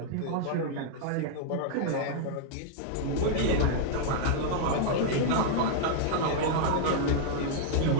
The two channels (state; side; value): different; both; correlation 0.00